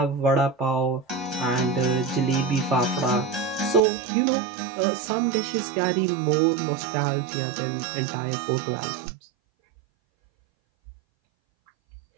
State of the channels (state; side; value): drops out; left; at 3.8 s